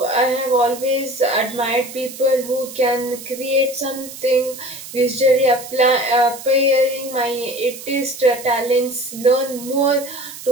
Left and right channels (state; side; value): noise; right; hiss, 13 dB below the sound